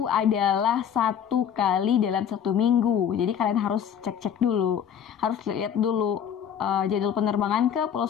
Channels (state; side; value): quieter; right; 8.5 dB